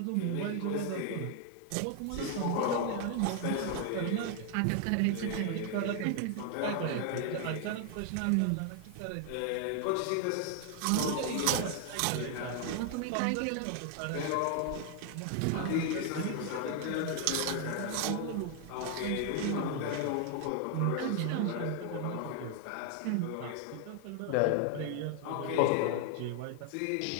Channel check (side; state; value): both; different; correlation 0.00